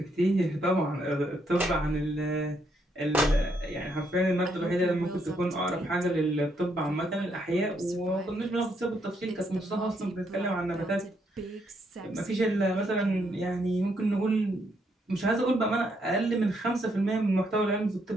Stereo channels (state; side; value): normal; both; correlation 0.75